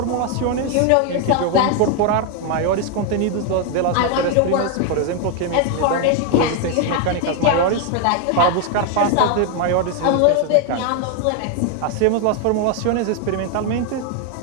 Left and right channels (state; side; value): different; both; correlation 0.01